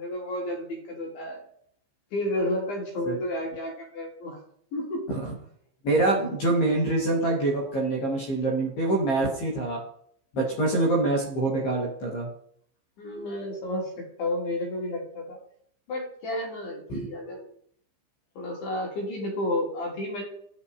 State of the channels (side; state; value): right; late; 15 ms